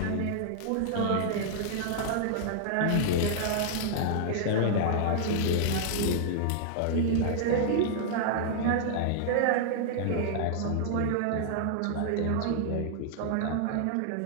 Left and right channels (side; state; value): both; different; correlation -0.01